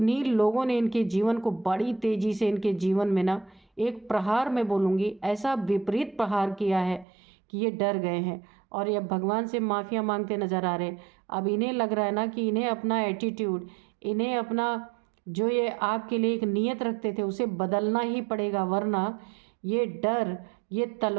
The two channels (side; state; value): left; drops out; at 7.1 s